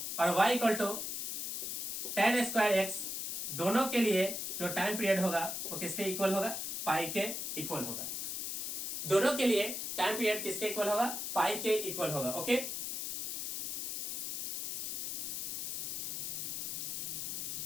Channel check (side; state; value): left; noise; hiss, 2 dB below the sound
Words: और y equal to tan square x, दोनों के लिए जो टाइम पीरियड होगा वो किसके इक्वल होगा, पाई के इक्वल होगा। दोनों के लिए टाइम पीरियड किसके इक्वल होगा, पाई के इक्वल होगा। ओके,